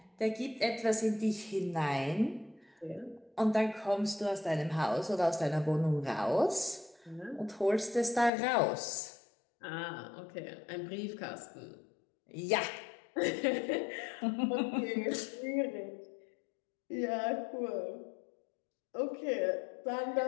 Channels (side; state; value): right; drops out; at 8.3 s